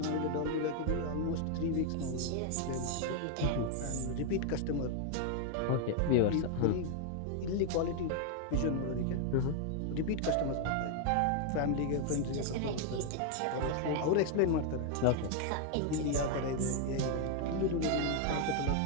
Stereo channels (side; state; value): both; different; correlation 0.00